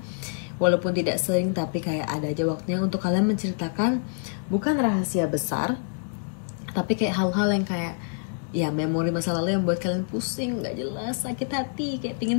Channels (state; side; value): silent; right; digital silence